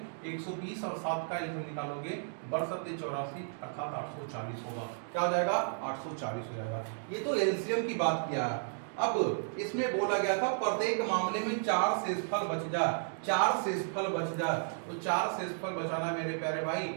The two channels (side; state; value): left; silent; digital silence